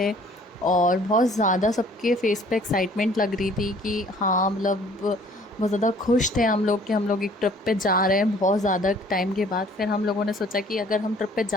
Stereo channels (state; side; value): normal; both; correlation 0.55